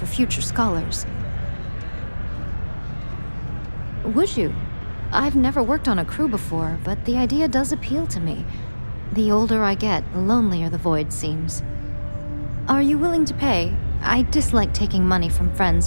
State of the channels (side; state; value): both; inverted; correlation -1.00